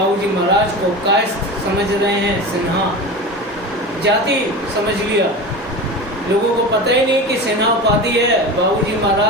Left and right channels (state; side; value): normal; both; correlation 0.28